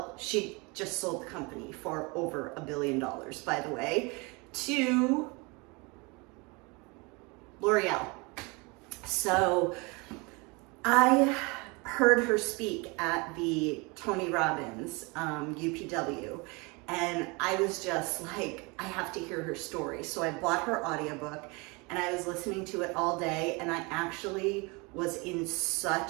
she just sold the company for over $1 billion, by the way, to L'Oreal. So I heard her speak at the Tony Robbins UPW, and I was just like, I have to hear her story. So I bought her audiobook and I was listening to it all day, and I actually was in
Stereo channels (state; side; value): quieter; left; 27.9 dB